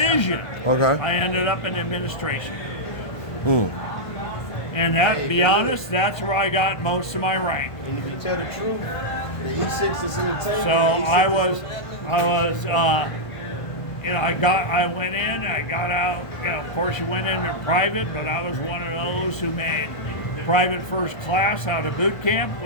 Okay. I ended up in administration. Mm. And that, to be honest, that's where I got most of my rank. And if you tell the truth, the E6 is in the tank. So I went in, I got out. You know, of course, you went into private, but I was one of those who made private first class out of boot camp,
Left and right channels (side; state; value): right; late; 1.5 ms